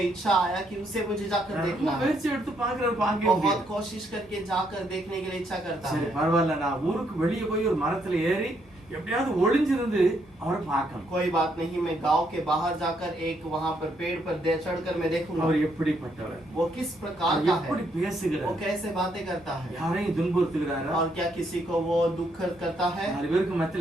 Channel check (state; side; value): normal; both; correlation 0.74